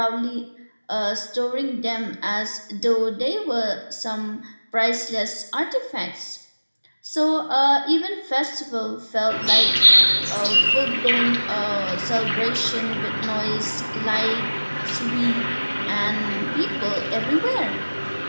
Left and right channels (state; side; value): inverted; both; correlation -1.00